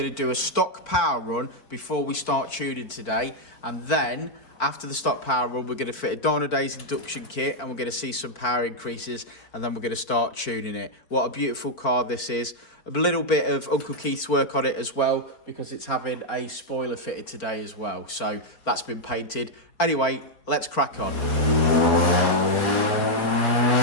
to do a stock power run before we start tuning today. And then after the stock power run, we're going to fit a Dynodaze induction kit, and we're going to see some power increases, and then we're going to start tuning it. What a beautiful car this is. A little bit of Uncle Keith's work on it as well, because it's having a spoiler fitted today as well, so that's been painted. Anyway, let's crack on.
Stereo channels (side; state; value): right; late; 4.6 ms